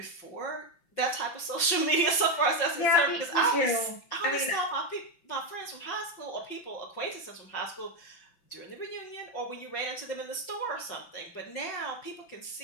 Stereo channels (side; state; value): right; late; 5.8 ms